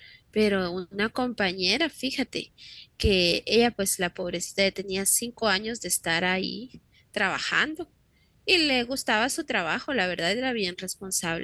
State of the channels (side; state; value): both; identical; correlation 1.00